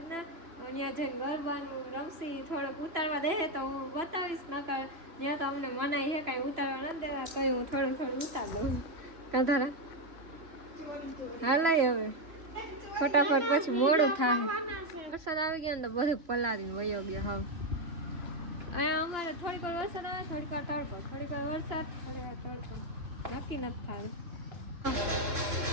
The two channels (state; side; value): late; left; 3.0 ms